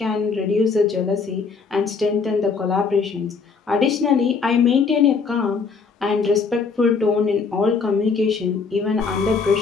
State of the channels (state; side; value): quieter; right; 5.0 dB